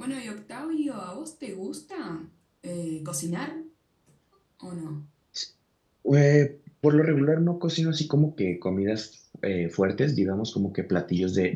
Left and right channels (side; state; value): both; identical; correlation 1.00